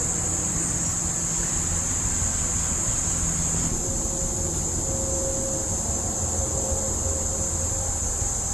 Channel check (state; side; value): noise; left; hiss, 11 dB below the sound